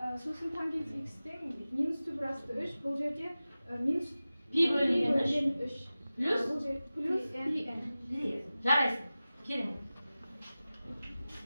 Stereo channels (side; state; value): both; inverted; correlation -0.96